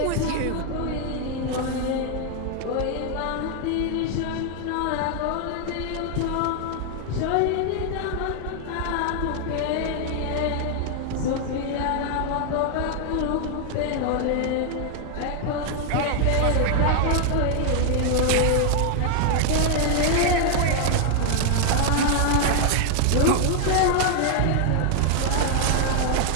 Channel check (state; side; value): different; both; correlation 0.00